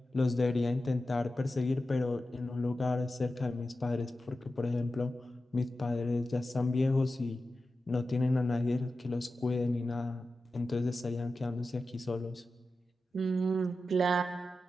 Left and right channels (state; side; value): normal; both; correlation 0.92